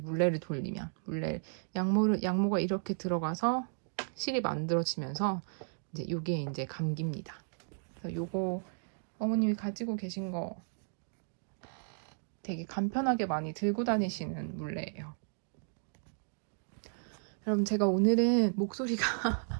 돌리면 양모가 이렇게 들어가서 실이 만들어지면서 이제 요게 이제 감깁니다. 그래서 요거 어머님이 가지고 계신 거 되게 간편하게 많이 들고 다니시는 물레예요. 여러분, 제가 오늘은 목소리가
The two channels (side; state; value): left; silent; digital silence